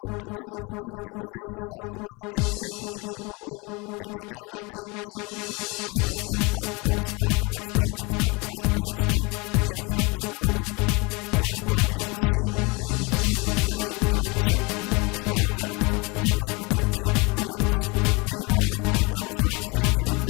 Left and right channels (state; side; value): quieter; right; 27.5 dB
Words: continued competing in the Laser South American Championships in Peru. At the end of day 2, Woman found herself up 1 spot from her starting 31st place to 30th overall. Only 1 race was sailed on the day, with Woman finishing 22nd. She now has 110 points. Meanwhile, the Renaissance Re Junior